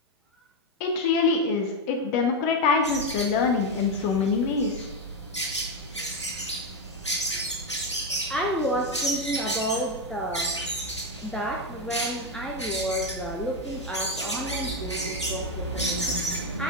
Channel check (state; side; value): normal; both; correlation 0.07